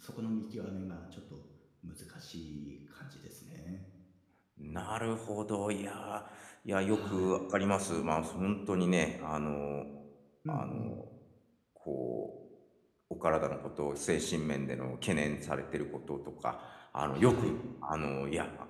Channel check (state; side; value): identical; both; correlation 1.00